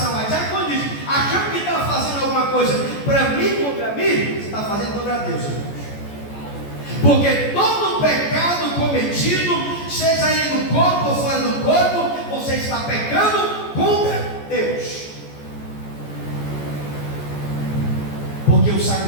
a diaconisa, achando que está fazendo alguma coisa para mim, contra mim, você está fazendo contra Deus, irmãos. Porque todo pecado cometido, seja ele no corpo ou fora do corpo, você está pecando contra Deus. Porque o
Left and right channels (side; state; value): right; late; 14 ms